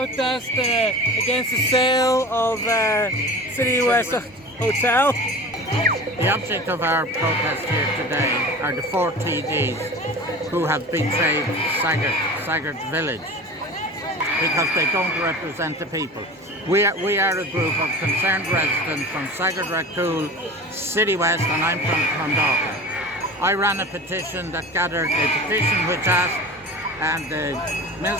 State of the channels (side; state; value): both; normal; correlation 0.36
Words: against the sale of City West Hotel. The object of our protest here today are the four TDs who have betrayed Saggart village because they don't represent the people. We are a group of concerned residents from Saggart, Racool, City West, and I'm from Clondalkin. I ran a petition that gathered a petition which asked the